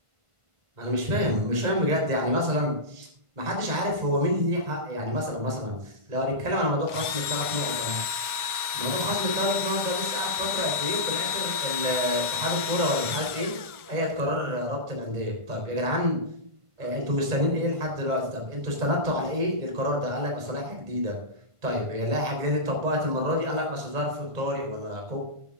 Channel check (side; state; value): left; late; 1.5 ms